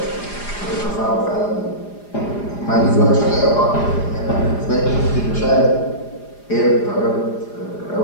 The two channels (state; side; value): late; right; 4.9 ms